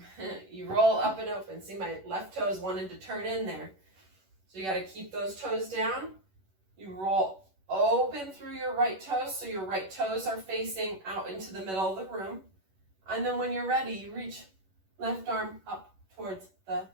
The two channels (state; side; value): late; left; 11 ms